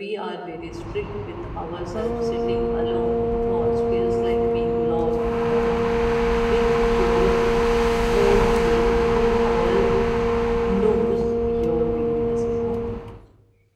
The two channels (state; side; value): identical; both; correlation 1.00